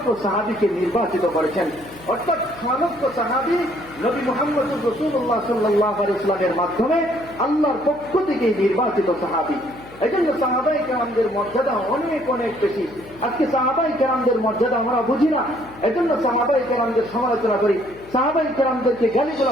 সাহাবীকে নির্বাচিত করেছেন। অর্থাৎ ৬ লক্ষ সাহাবী নবী মুহাম্মদুর রাসূলুল্লাহ সাল্লাল্লাহু আলাইহি ওয়াসাল্লামের মাধ্যমে আল্লাহর পক্ষ থেকে নির্বাচিত সাহাবী। এই জন্য সাহাবায়ে কেরামদের মর্যাদা অনেক অনেক বেশি। আজকে সাহাবায়ে কেরামদের মর্যাদা আমরা বুঝি না, এজন্য সাহাবায়ে কেরামদের সমালোচনা করি, সাহাবায়ে কেরামদেরকে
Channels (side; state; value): left; noise; hum, 21 dB below the sound